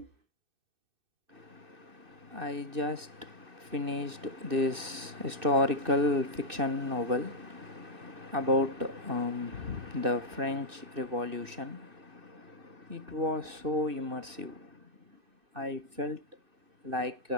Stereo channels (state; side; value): late; left; 2.6 ms